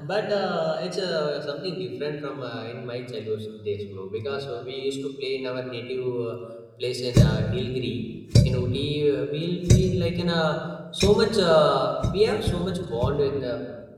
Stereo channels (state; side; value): identical; both; correlation 1.00